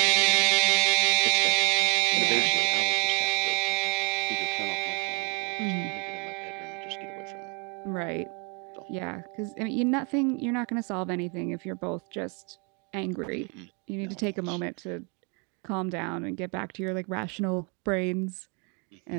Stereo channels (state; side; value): quieter; left; 34.3 dB